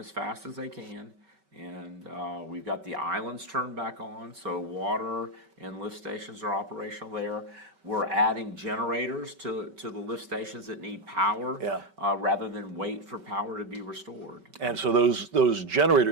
fast as they can. And we've got the islands turned back on, so water and lift stations are operational there. We're adding generators to the lift stations that need power, rather than wait for power to be restored. And so those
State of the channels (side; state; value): left; late; 5.2 ms